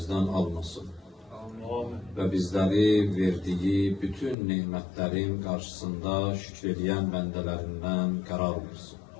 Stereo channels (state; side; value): drops out; right; at 4.4 s